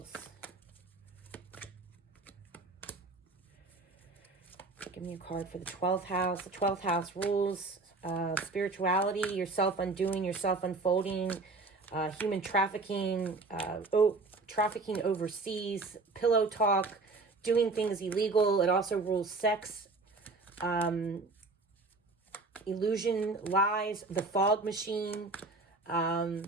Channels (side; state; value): left; quieter; 3.6 dB